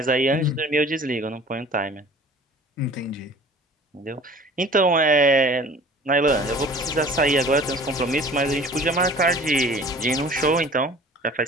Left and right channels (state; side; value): normal; both; correlation 0.46